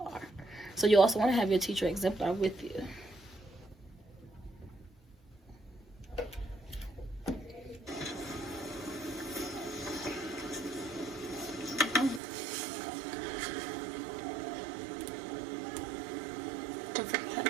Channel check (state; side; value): drops out; left; at 12.2 s